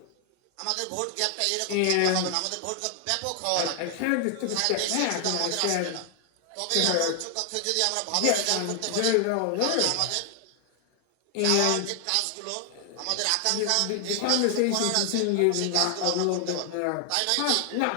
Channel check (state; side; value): different; both; correlation 0.00